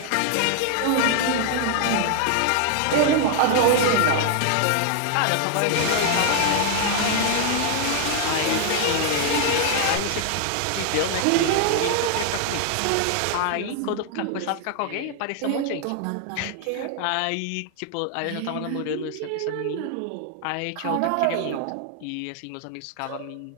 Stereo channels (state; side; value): different; both; correlation 0.00